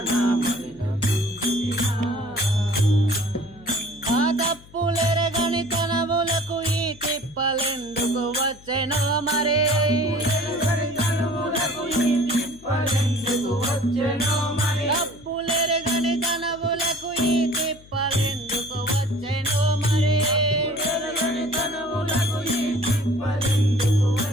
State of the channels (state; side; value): noise; left; hum, 23 dB below the sound